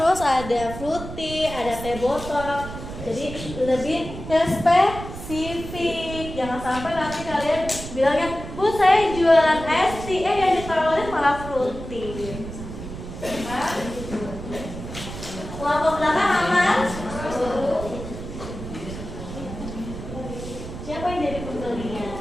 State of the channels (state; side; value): noise; right; rumble, 10 dB below the sound